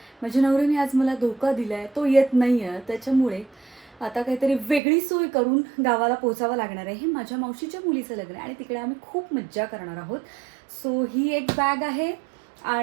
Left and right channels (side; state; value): left; drops out; at 4.8 s